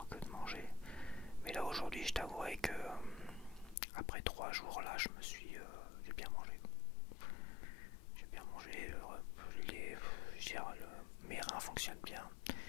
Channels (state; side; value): drops out; right; at 3.8 s